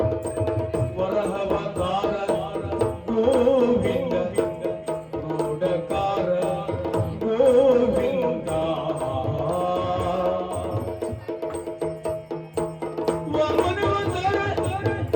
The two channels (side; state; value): both; identical; correlation 1.00